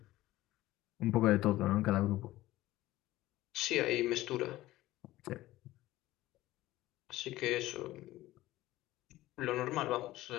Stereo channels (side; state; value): right; quieter; 16.6 dB